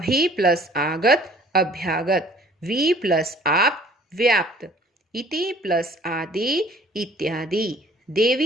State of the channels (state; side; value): normal; both; correlation 0.53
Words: प्लस आगत, अभ्यागत। वी प्लस आप, व्याप्त। इति प्लस आदि, इत्यादि।